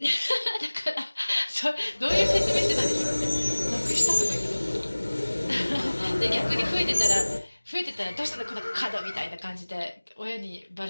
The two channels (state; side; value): inverted; both; correlation -1.00